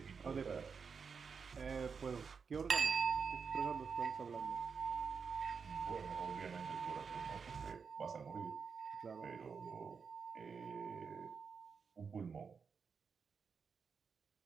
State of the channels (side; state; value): left; quieter; 5.7 dB